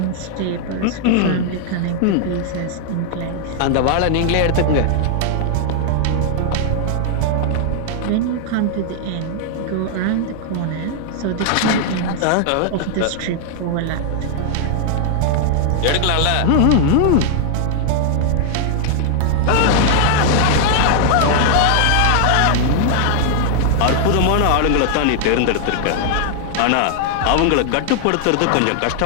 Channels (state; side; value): different; both; correlation 0.00